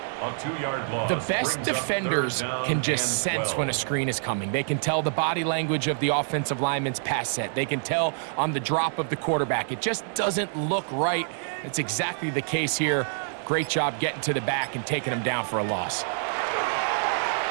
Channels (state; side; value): silent; left; digital silence